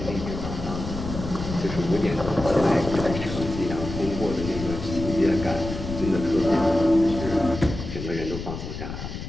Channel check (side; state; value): left; noise; rumble, 7 dB below the sound